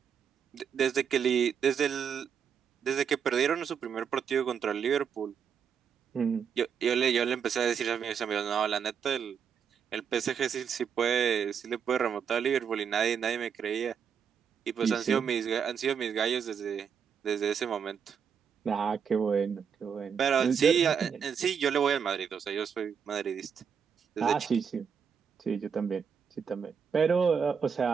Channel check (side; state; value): left; quieter; 7.1 dB